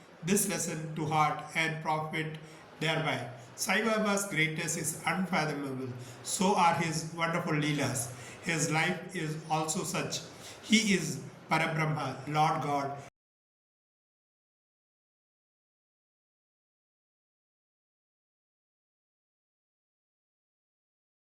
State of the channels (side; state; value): both; identical; correlation 1.00